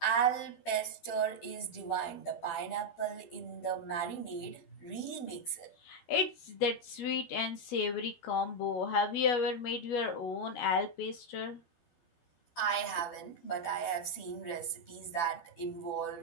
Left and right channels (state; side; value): late; right; 12 ms